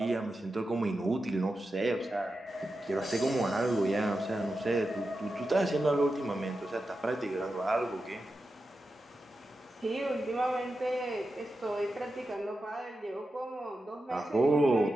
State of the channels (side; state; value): both; normal; correlation 0.90